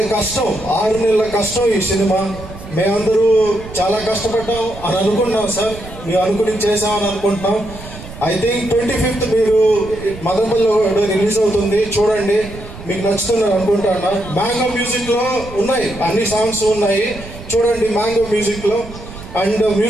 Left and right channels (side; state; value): right; noise; rumble, 14 dB below the sound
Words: కష్టం, 6 నెలల కష్టం ఈ సినిమా. మేమందరూ చాలా కష్టపడ్డాం అని అనుకున్నాం సార్, మేము అనుకుని చేసామని అనుకుంటున్నాం. ఐ థింక్ 25th మీరు మదనపల్లిలో రిలీజ్ అవుతుంది, చూడండి, మీకు నచ్చుతుందని అనుకుంటున్నా. మ్యాంగో మ్యూజిక్ లో ఉన్నాయి, అన్ని సాంగ్స్ ఉన్నాయి, చూడండి మ్యాంగో మ్యూజిక్ లో. అండ్